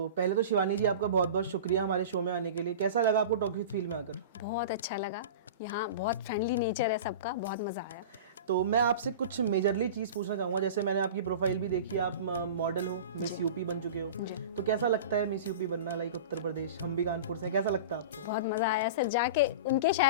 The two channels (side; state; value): both; inverted; correlation -0.33